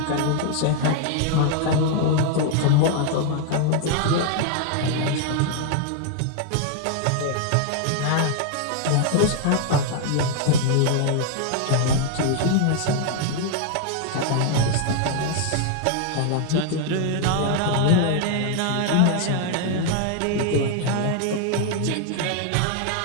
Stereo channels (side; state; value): both; different; correlation 0.00